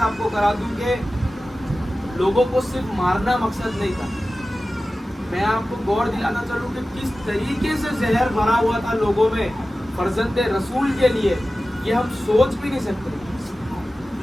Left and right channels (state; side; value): normal; both; correlation 0.95